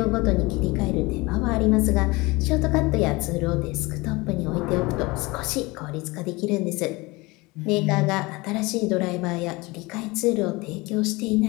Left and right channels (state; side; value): quieter; right; 23.4 dB